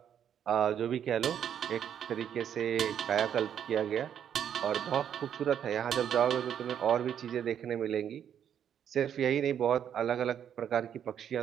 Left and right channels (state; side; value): quieter; left; 9.1 dB